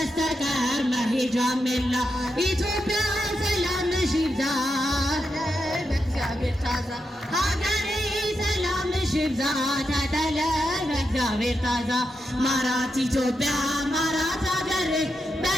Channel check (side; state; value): both; normal; correlation 0.86